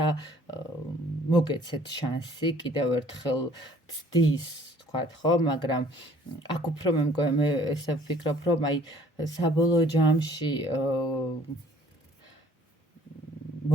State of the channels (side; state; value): both; normal; correlation 0.56